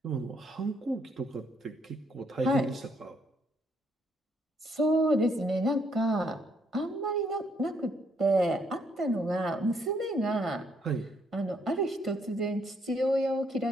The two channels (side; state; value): both; normal; correlation 0.71